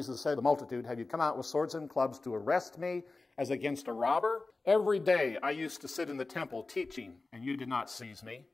said to the multitude, "Have you come out with swords and clubs to arrest me as against a robber? Every day I used to sit in the temple teaching, and you did not seize me.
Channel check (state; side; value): quieter; right; 3.5 dB